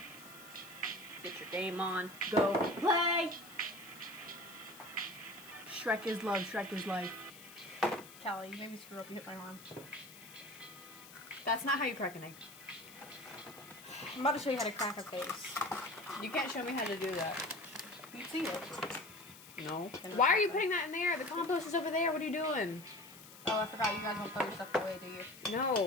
Get your game on. Go play! Shrek is love, Shrek is life. Callie, you made me screw up. You hit my arm. That's not how you crack an egg. I'm about to show you how to crack a face. You can't show me how to do that. You see it. No. Why are you putting that in there? The compost is over there. What are you doing? Oh, I forgot. You guys don't throw your stuff away, do you?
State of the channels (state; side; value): noise; left; hiss, 18 dB below the sound